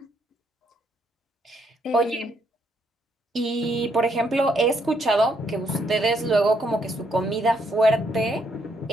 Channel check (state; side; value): normal; both; correlation 0.73